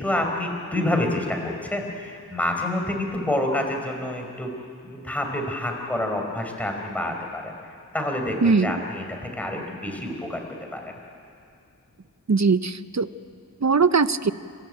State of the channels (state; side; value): normal; both; correlation 0.40